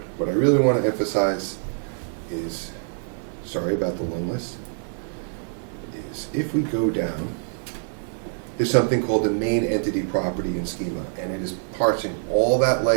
I really want to emphasize is, sorry about the long list, is if we go down, there's something called the main entity property in Schema, and it is parsing all that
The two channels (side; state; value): left; silent; digital silence